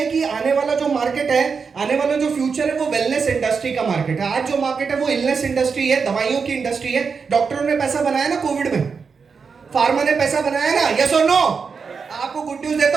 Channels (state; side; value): quieter; left; 5.5 dB